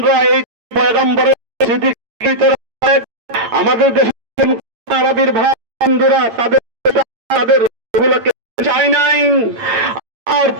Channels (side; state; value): left; late; 8.8 ms